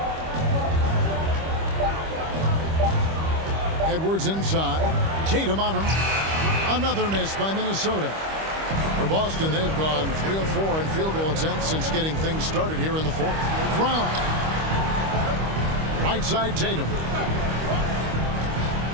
Edwards inside, Tatum on him. Another miss by Minnesota. For Boston, they've gone 3 of 4 in field goal attempts since getting things started here in the 4th. Brown. Right side Tatum.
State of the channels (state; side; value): late; left; 25 ms